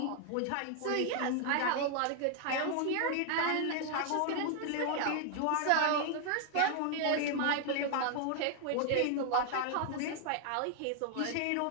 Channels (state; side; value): different; both; correlation 0.00